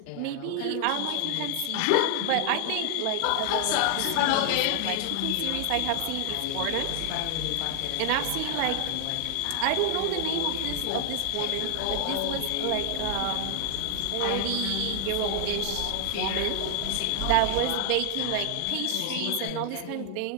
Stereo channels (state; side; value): different; both; correlation 0.00